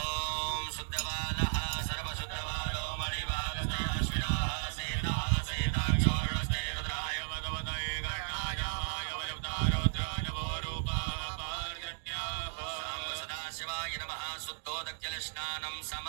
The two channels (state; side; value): silent; left; digital silence